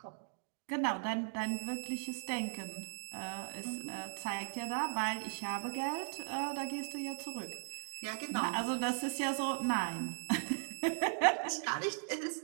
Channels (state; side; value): silent; left; digital silence